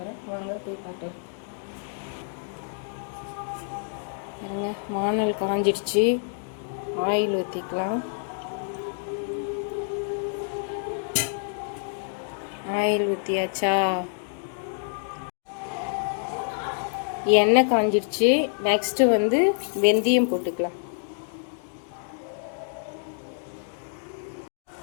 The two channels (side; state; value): right; silent; digital silence